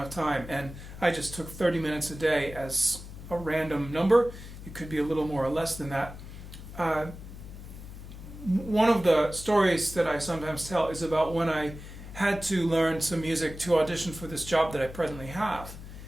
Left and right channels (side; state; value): left; noise; hum, 13 dB below the sound